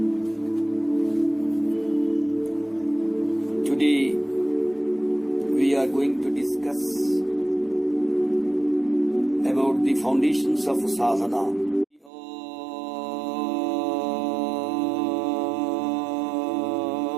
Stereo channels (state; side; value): drops out; left; at 12.1 s